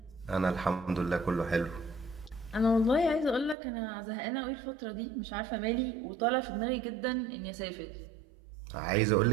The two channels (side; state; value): left; drops out; at 3.6 s